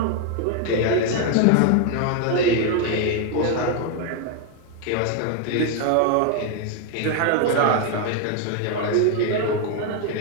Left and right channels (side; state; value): both; different; correlation 0.01